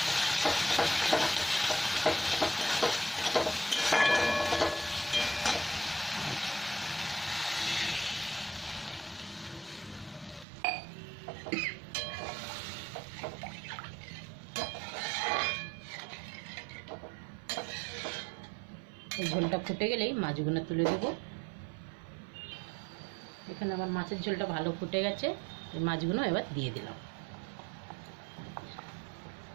এই ঝোলটা ফুটে গেলেই মাছগুলো তুলে দেব। এখানে আমার মাছের ঝোলটা ভালো ফুটে গেছে, এই মাছগুলো এবার দিয়ে দিলাম।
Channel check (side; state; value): left; drops out; at 10.5 s